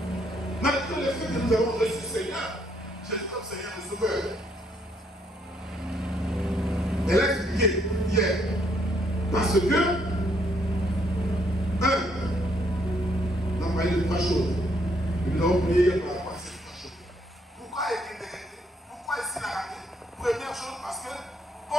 Malgré le fait que nous avons reçu le Seigneur, Jésus comme Seigneur et Sauveur. Elle a expliqué hier. Parce que, on a parlé de 3 choses. Et nous avons prié hier par rapport à ces 3 choses. Pourquoi est-il décrété? Pourquoi est-il arrêté? Première chose, parce que quand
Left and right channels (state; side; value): normal; both; correlation 0.71